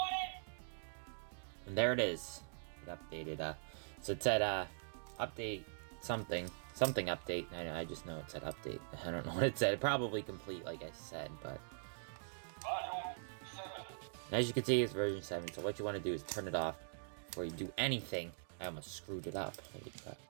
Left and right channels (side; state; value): left; silent; digital silence